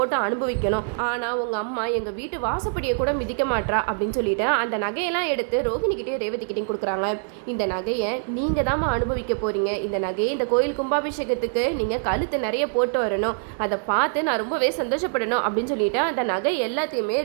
அனுபவிக்கணும், ஆனா உங்க அம்மா எங்க வீட்டு வாசப்படியை கூட மிதிக்க மாட்டா அப்படின்னு சொல்லிட்டு அந்த நகையெல்லாம் எடுத்து ரோகிணி கிட்டேயும் ரேவதி கிட்டையும் கொடுக்குறாங்க. இந்த நகையை நீங்க தாம அனுபவிக்க போறீங்க. இந்த நகையை இந்த கோயில் கும்பாபிஷேகத்துக்கு நீங்க கழுத்து நிறைய போட்டு வரணும், அதை பார்த்து நான் ரொம்பவே சந்தோஷப்படணும் அப்படின்னு சொல்லிட்டு அந்த நகை எல்லாத்தையுமே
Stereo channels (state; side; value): silent; left; digital silence